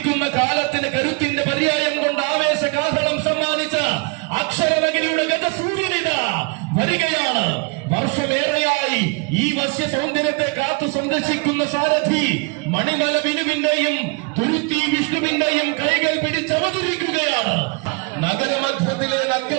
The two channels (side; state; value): left; quieter; 28.5 dB